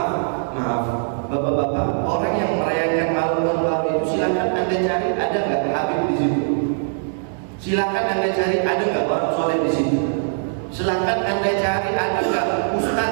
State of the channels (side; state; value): left; silent; digital silence